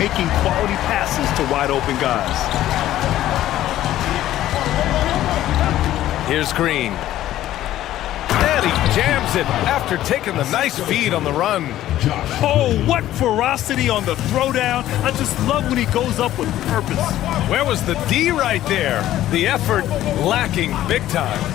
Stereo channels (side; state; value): right; quieter; 13.6 dB